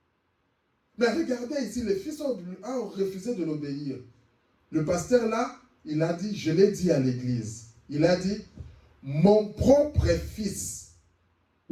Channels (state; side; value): identical; both; correlation 1.00